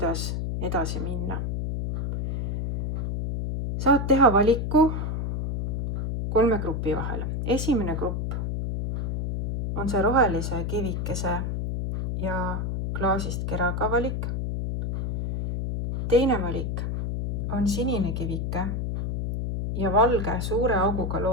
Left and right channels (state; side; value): noise; left; hum, 1 dB below the sound